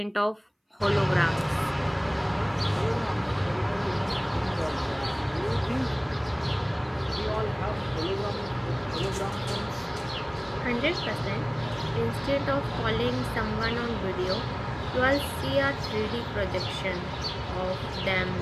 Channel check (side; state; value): both; identical; correlation 1.00